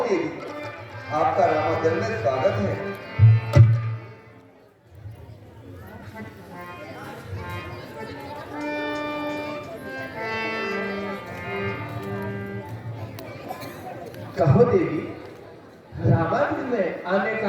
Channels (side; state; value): both; identical; correlation 1.00